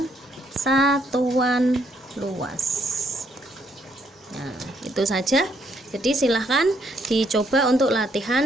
satuan luas. Nah, itu saja. Jadi silahkan dicoba untuk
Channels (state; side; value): normal; both; correlation 0.72